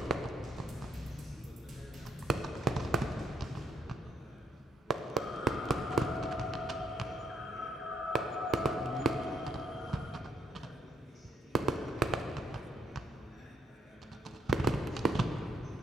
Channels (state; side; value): normal; both; correlation 0.70